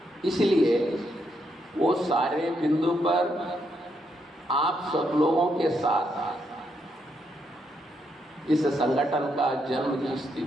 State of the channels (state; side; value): normal; both; correlation 0.78